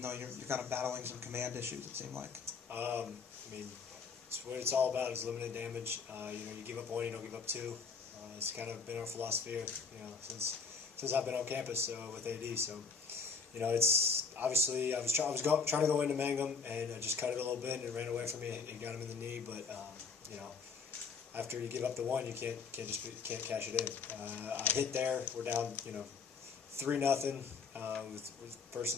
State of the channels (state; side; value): quieter; right; 5.1 dB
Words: though you're kind of battling some command issues, it seemed like? It's what it's all about is limited damage. You give up one, you don't give up two. It's kind of been our philosophy, since I've been on campus with AD. So, it's obviously I was trying to go into Mangum, and I just cut it a little bit, and it ran away from me and got him in the knee. But after you give up the one, you can't cash it in. I hit there. We're down 3-0 with first